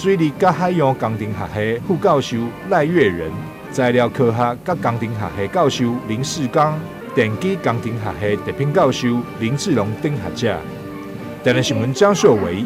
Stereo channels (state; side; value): noise; right; hum, 30 dB below the sound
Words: 利甲海洋工程学系副教授赖月仁、材料科学甲工程学系教授林世刚、电机工程学系特聘教授林志龙等学者。台南新闻张硕维